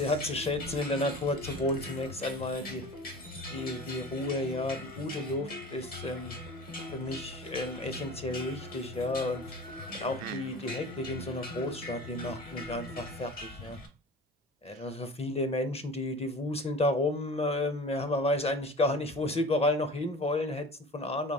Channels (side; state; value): both; normal; correlation 0.38